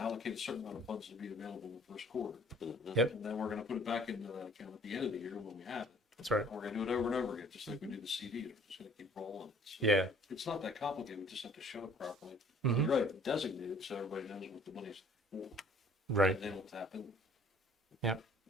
a certain amount of funds to be available in the first quarter. Yep. And then we're gonna put it back into that account at the end of the year when we have it. That's right. And we're gonna do it over and over again, just like we do the CD, we're just gonna keep rolling. So Yeah. it's not that complicated, we just have to show it properly. Mhm. You're right, designate it so everybody knows what the money's for. Right. And then we'll tap in.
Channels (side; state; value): both; normal; correlation 0.54